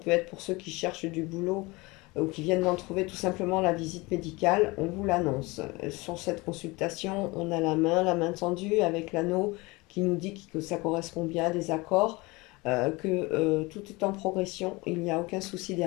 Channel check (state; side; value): quieter; right; 23.8 dB